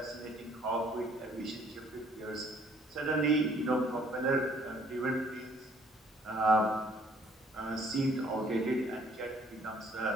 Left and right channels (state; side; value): normal; both; correlation 0.61